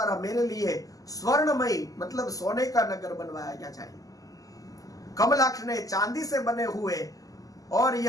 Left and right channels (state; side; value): late; right; 0.17 ms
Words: मेरे लिए स्वर्णमयी मतलब सोने का नगर बनवाया जाए। कमलाक्ष ने चांदी से बने हुए और